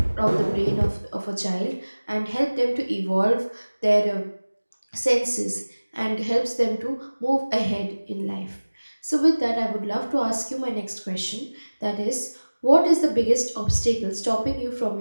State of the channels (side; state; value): both; inverted; correlation -1.00